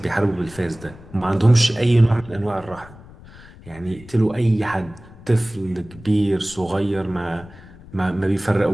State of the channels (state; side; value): noise; left; rumble, 20 dB below the sound